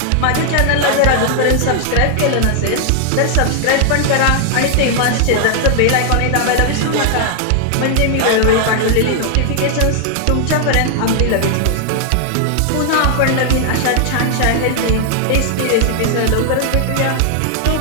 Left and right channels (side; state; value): both; different; correlation 0.00